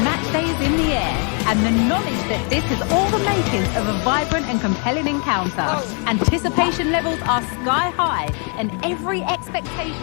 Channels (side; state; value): right; quieter; 38.5 dB